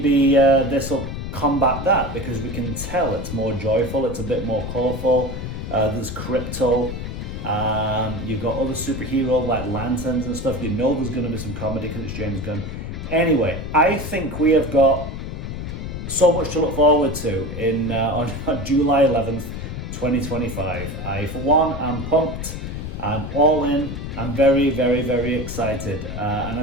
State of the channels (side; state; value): left; noise; rumble, 6 dB below the sound